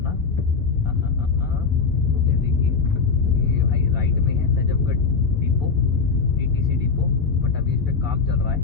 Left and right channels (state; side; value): quieter; right; 5.0 dB